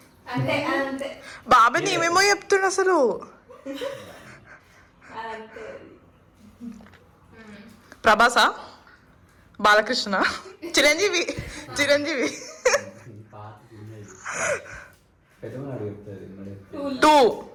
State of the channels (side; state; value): both; identical; correlation 1.00